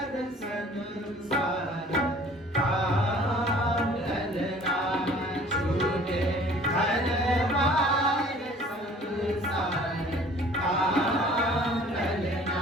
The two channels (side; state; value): both; normal; correlation 0.51